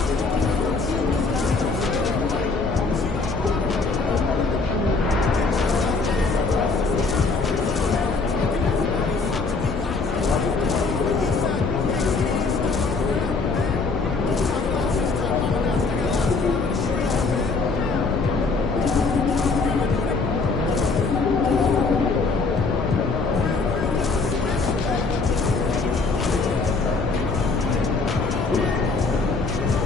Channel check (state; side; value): quieter; right; 4.1 dB